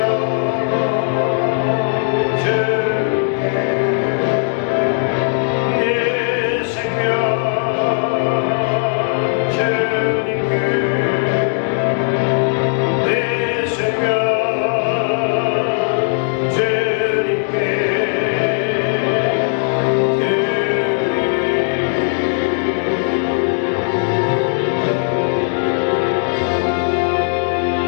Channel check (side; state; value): right; silent; digital silence